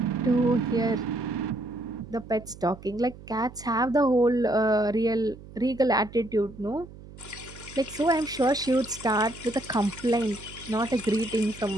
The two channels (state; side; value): noise; right; hum, 17 dB below the sound